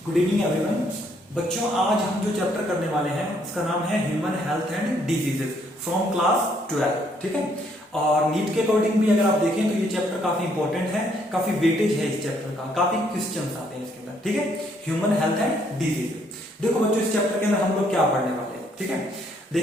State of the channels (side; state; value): both; normal; correlation 0.69